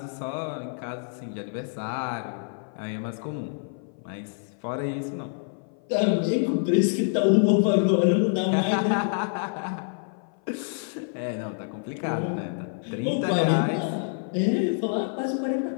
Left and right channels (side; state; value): right; silent; 55 dB below the other